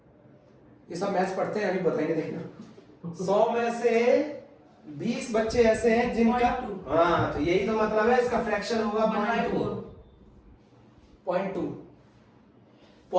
ये सब मैथ्स पढ़ते हैं, अभी बताएंगे, देखना। 100 में से 20 बच्चे ऐसे हैं जिनका, हाँ, तो यही तो मतलब है, इसका फ्रैक्शन होगा 0.2।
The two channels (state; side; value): identical; both; correlation 1.00